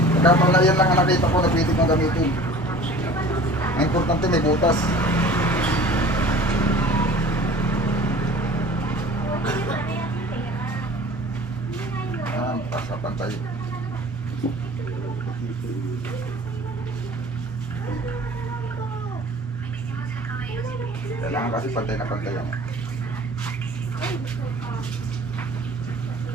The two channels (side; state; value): both; normal; correlation 0.45